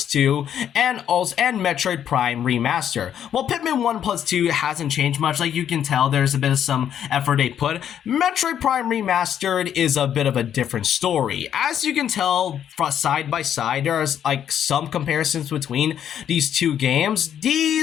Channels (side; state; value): right; quieter; 9.5 dB